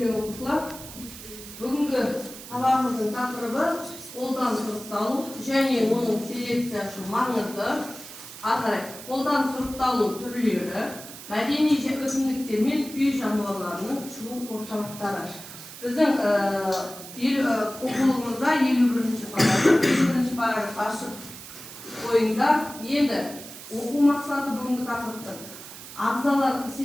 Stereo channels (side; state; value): right; noise; hiss, 14 dB below the sound